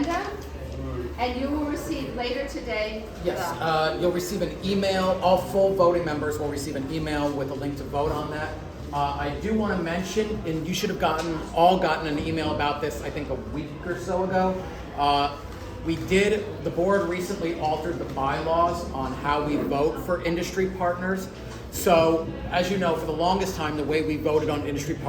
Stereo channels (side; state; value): both; identical; correlation 1.00